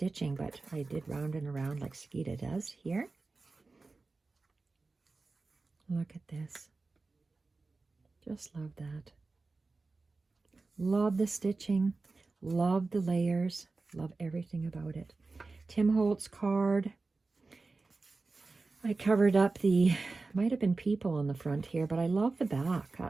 but I did round and around like Skeeta does here. Look at this. Just love that. Love the stitching. Love the layers. Love everything about it. Tim Holtz card. I covered up might have been people on the front here, but I love the back.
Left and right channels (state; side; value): quieter; left; 3.7 dB